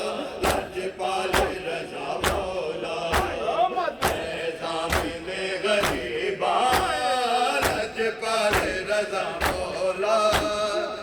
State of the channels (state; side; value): identical; both; correlation 1.00